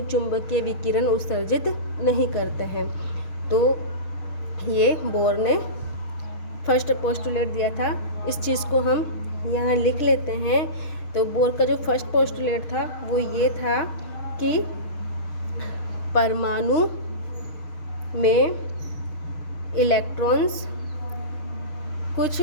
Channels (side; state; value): right; late; 6.5 ms